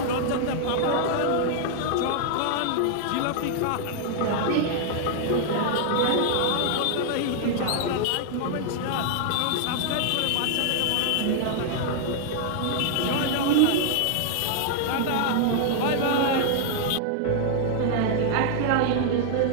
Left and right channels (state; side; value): different; both; correlation 0.00